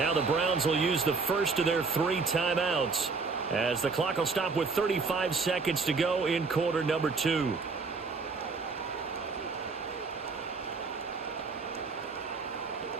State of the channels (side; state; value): left; quieter; 4.4 dB